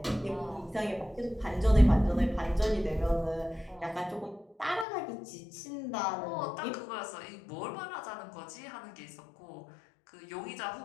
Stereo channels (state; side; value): drops out; right; at 4.9 s